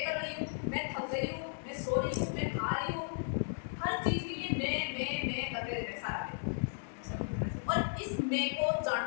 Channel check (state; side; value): silent; right; digital silence